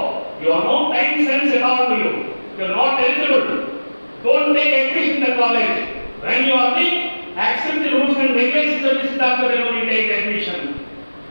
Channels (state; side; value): inverted; both; correlation -1.00